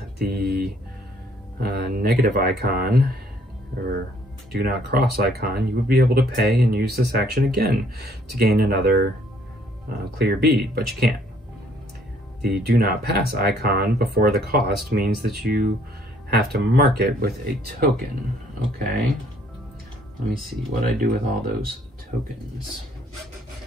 the negative icon, or do not cross icon, you would be able to pay and use this action again to gain another clear bead, but you can't. The do not pass icon before the cost means that you have to mark it with a token. Okay, let me see what I do with all those tokens.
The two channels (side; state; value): both; normal; correlation 0.63